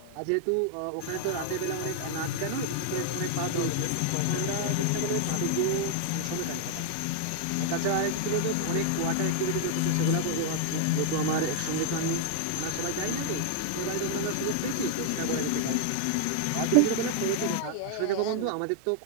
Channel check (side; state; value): both; different; correlation 0.00